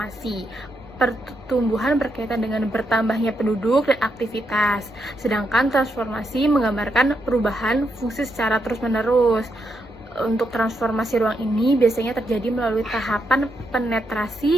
Pertumbuhan berkaitan dengan bertambahnya penduduk dan aktivitas, sedangkan transformasi menggambarkan perubahan fungsi secara terus-menerus. Untuk transformasi ruang ini biasanya terjadi melalui tahapan penetrasi,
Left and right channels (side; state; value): both; normal; correlation 0.81